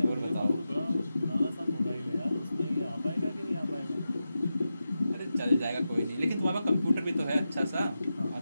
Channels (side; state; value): both; inverted; correlation -0.91